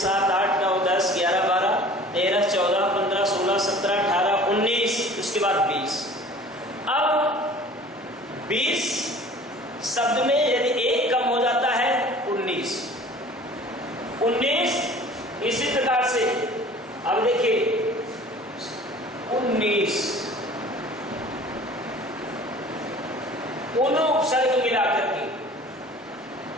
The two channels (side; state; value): both; normal; correlation 0.46